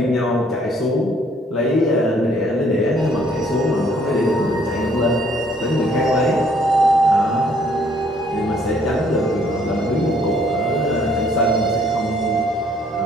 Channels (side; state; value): both; normal; correlation 0.63